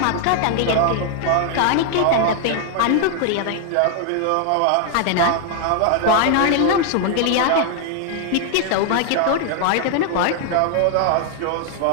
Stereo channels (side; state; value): both; different; correlation 0.00